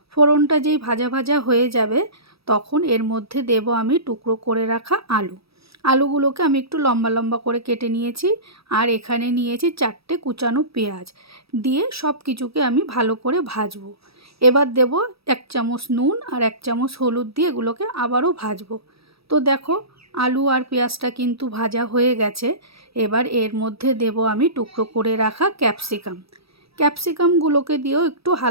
ফোড়নটা যেই ভাজা ভাজা হয়ে যাবে, তখন এর মধ্যে দেব আমি টুকরো করে রাখা আলু। আলুগুলোকে আমি একটু লম্বা লম্বা করে কেটে নিয়েছি, আর এখানে নিয়েছি 4টে কুচানো পেঁয়াজ। দিয়ে সব কিছুকে আমি ভালো করে ভাজবো। এবার দেব 1 চামচ নুন আর 1 চামচ হলুদ দিয়ে এগুলোকে আবারও ভাজবো। তো দেখো, আলু আর পেঁয়াজটা কিন্তু ভাজা হয়ে গেছে। এবার এর মধ্যে দেব আমি টুকরো করে রাখা ক্যাপসিকাম। ক্যাপসিকামগুলোকে দিয়েও একটু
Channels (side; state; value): left; late; 0.77 ms